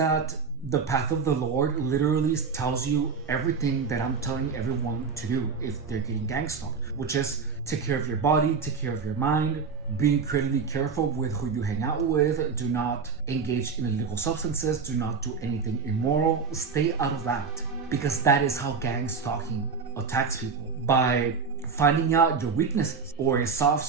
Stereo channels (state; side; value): quieter; left; 5.5 dB